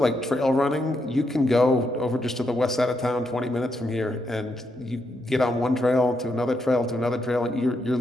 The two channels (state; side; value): normal; both; correlation 0.80